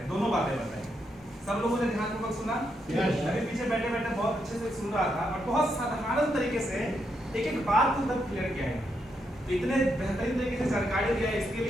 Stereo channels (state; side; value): normal; both; correlation 0.80